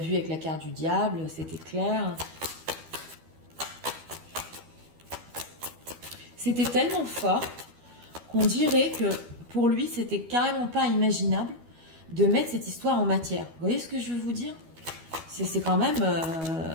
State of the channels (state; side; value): late; left; 12 ms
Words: avec la carte du diable, c'était clair. C'était tellement fort qu'on dirait que pour lui, c'était carrément pas imaginable de mettre cette histoire en matière. Vous voyez ce que je veux vous dire? C'est quand même...